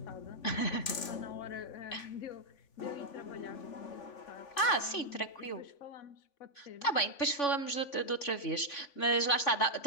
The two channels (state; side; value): late; right; 3.5 ms